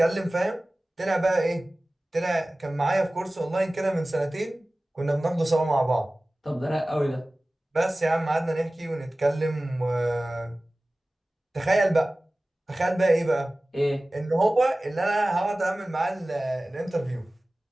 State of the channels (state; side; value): normal; both; correlation 0.97